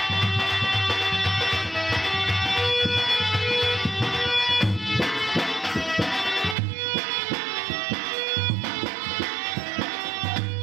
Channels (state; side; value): drops out; left; at 6.6 s